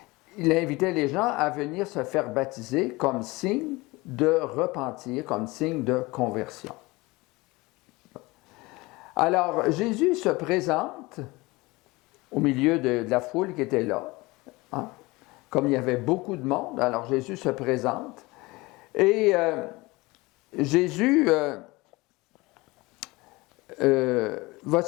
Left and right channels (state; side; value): quieter; right; 22.5 dB